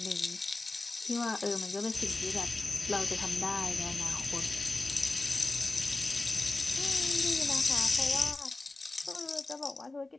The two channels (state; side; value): quieter; right; 3.1 dB